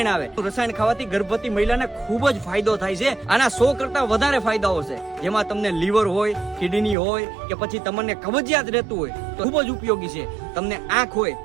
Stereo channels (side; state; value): left; drops out; at 7.0 s